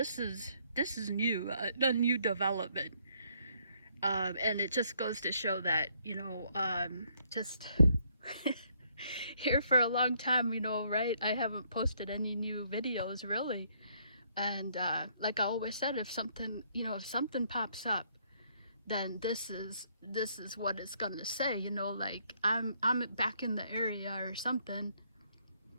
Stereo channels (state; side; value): inverted; both; correlation -0.69